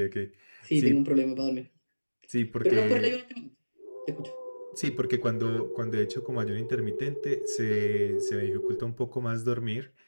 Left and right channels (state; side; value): inverted; both; correlation -1.00